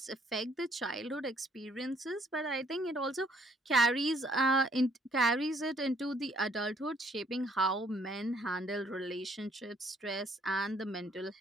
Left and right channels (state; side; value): normal; both; correlation 0.65